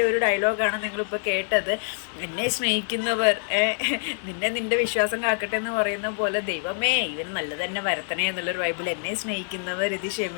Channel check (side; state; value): right; silent; digital silence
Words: ഒരു ഡയലോഗാണ് നിങ്ങളിപ്പോൾ കേട്ടത്. എന്നെ സ്നേഹിക്കുന്നവർ നിന്റെ വിശ്വാസം കാക്കട്ടെ എന്ന് പറയുന്ന പോലെ, ദൈവമേ ഇവന് നല്ലത് തന്നെ വരത്തണേ എന്നുള്ളൊരു വൈബിൽ എന്നെ സ്നേഹിക്കുന്നവർ ഇത്